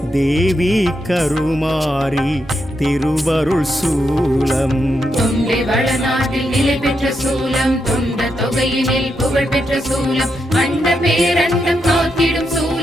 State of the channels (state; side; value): normal; both; correlation 0.83